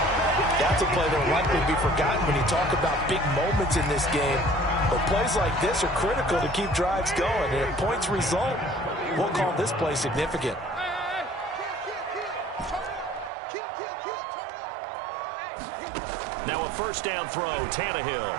That's a play that will likely be forgotten when you talk about big moments in this game. But plays like this are critical to keep drives going. And if points result, we'll call this play significant. Now a 1st down throw, Tannehill.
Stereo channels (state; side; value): drops out; left; at 13.3 s